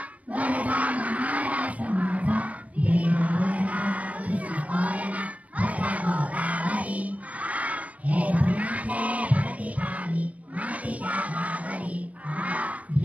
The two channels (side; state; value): left; late; 0.067 ms